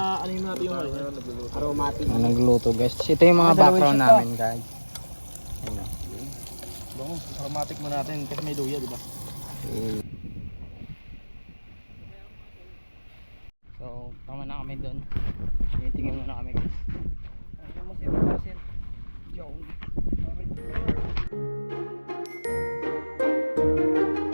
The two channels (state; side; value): inverted; both; correlation -1.00